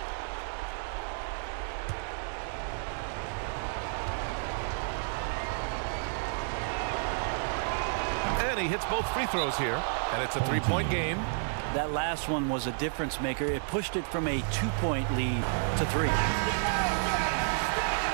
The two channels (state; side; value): silent; left; digital silence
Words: he hits both free throws here, and it's a three-point game. That last one was a difference maker. It pushed it from a 2-point lead to 3.